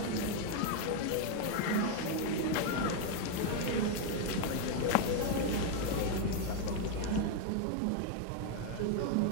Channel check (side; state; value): both; different; correlation 0.01